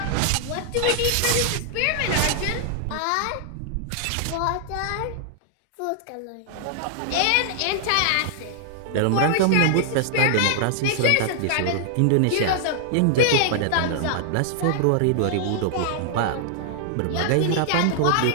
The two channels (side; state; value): both; different; correlation 0.00